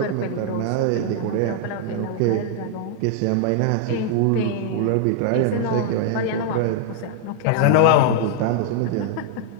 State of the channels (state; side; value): different; both; correlation 0.00